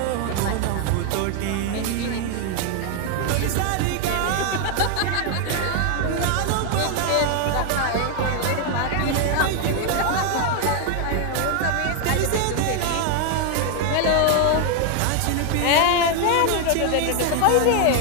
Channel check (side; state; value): both; different; correlation 0.01